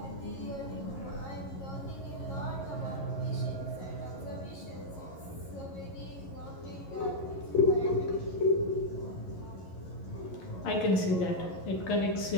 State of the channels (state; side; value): late; right; 11 ms